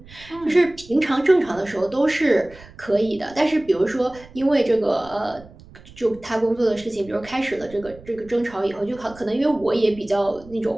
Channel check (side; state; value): right; noise; rumble, 21 dB below the sound